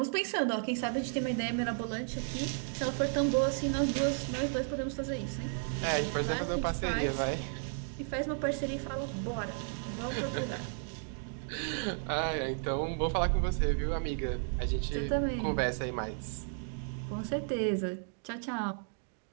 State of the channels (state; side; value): silent; left; digital silence